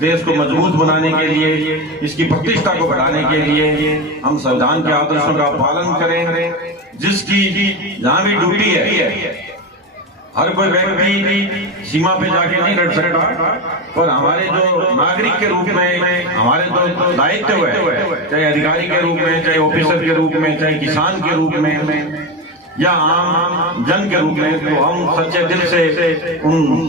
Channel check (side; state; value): both; normal; correlation 0.18